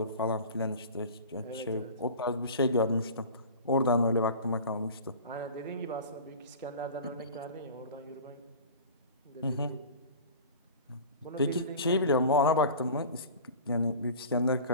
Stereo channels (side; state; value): both; inverted; correlation -0.38